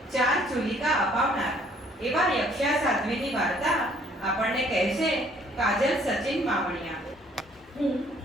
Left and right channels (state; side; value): normal; both; correlation 0.61